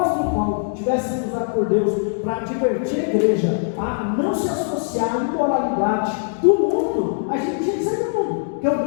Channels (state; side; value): silent; right; digital silence